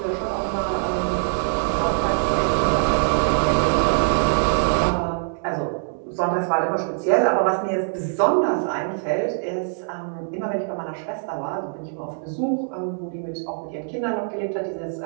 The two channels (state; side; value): silent; left; digital silence